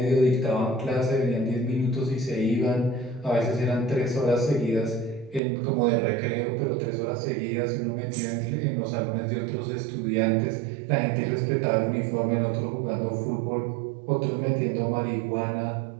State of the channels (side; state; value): left; drops out; at 5.4 s